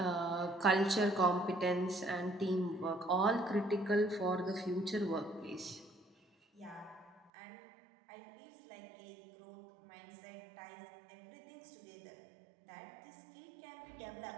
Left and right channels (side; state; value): left; drops out; at 7.3 s